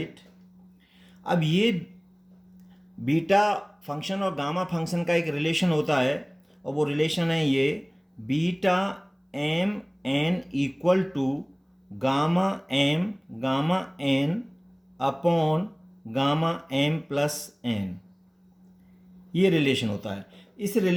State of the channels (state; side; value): identical; both; correlation 1.00